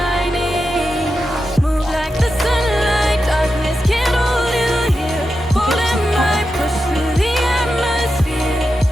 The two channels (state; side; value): normal; both; correlation 0.89